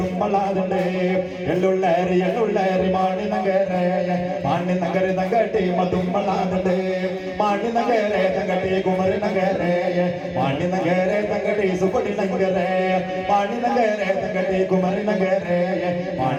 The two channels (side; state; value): both; identical; correlation 1.00